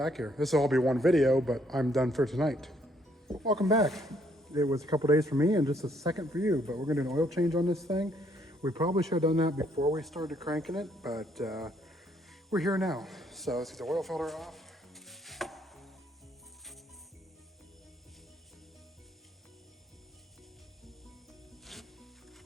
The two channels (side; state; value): both; normal; correlation 0.68